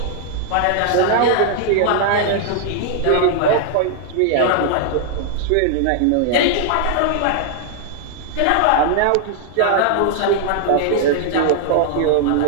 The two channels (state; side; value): different; both; correlation 0.00